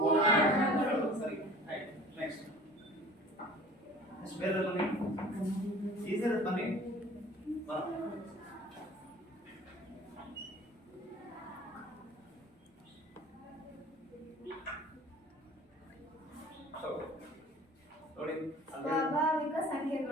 ಸರಿ, ಆಯ್ತು. ನೆಕ್ಸ್ಟ್ ಬೇರೆ ಬನ್ನಿ, ಈಸಿ ಇರುತ್ತೆ ಬನ್ನಿ. ನೋಡಿ, ಸ್ವಾಭಾವಿಕ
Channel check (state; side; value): normal; both; correlation 0.46